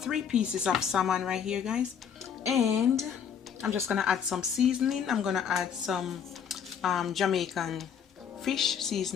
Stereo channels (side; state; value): right; quieter; 7.7 dB